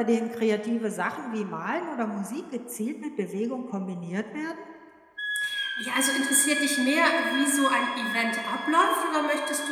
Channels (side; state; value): both; identical; correlation 1.00